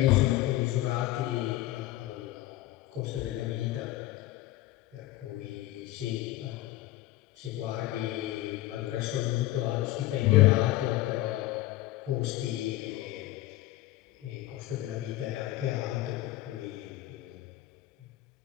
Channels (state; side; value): quieter; right; 15.9 dB